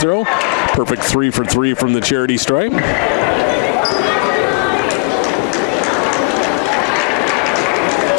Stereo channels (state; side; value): quieter; right; 34.2 dB